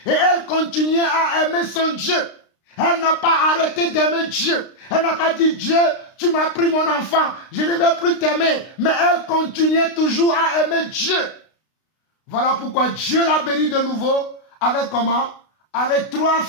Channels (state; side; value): late; right; 32 ms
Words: Et elle continuait à aimer son Dieu. Elle n'a pas arrêté d'aimer Dieu. Elle n'a pas dit, Dieu, tu m'as pris mon enfant, je ne vais plus t'aimer. Mais elle continuait toujours à aimer Dieu. Voilà pourquoi Dieu l'a béni de nouveau avec comment? Avec 3